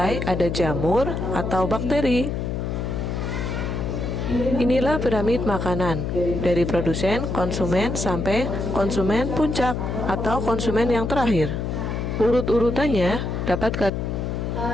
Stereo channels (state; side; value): noise; left; hum, 2 dB below the sound